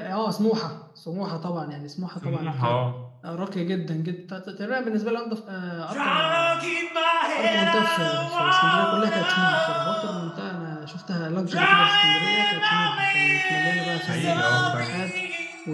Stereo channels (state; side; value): identical; both; correlation 1.00